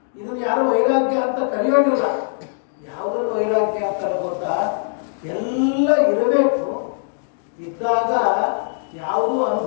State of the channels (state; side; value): silent; right; digital silence